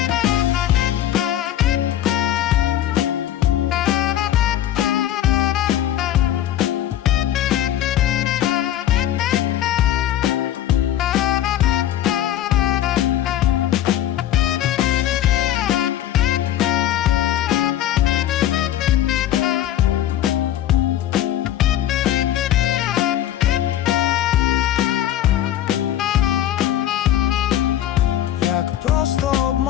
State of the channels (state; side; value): quieter; right; 12.0 dB